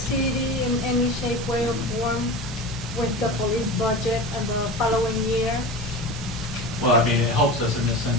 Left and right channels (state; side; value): normal; both; correlation 0.30